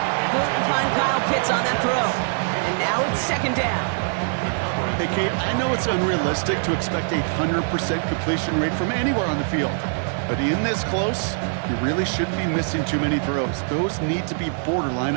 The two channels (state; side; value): silent; left; 63 dB below the other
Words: Couldn't find Kyle Pitts on that throw. And now it's second down. Hey, Kate, I know it's unrealistic to expect a 100% completion rate from anywhere on the field. But in this close, you really shouldn't be missing too many throws. Those need to be borderline